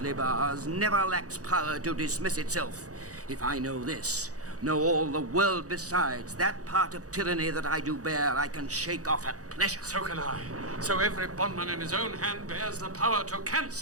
bars, never lacks power to dismiss itself. If I know this, know all the world besides, that part of tyranny that I do bear, I can shake off at pleasure. So can I. So every bondman in his own hand bears the power to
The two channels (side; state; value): left; late; 0.67 ms